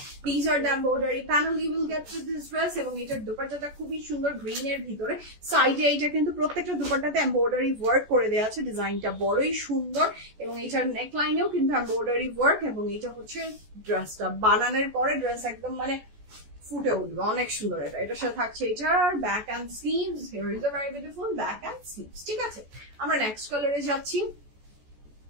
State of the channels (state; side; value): late; left; 14 ms